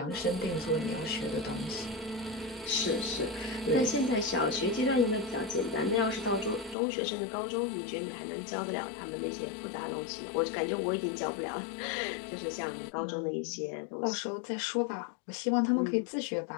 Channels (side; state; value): right; drops out; at 6.8 s